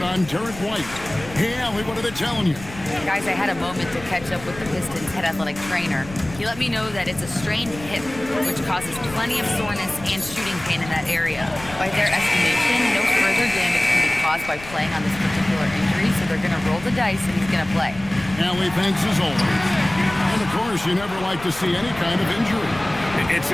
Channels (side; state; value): left; noise; rumble, 16 dB below the sound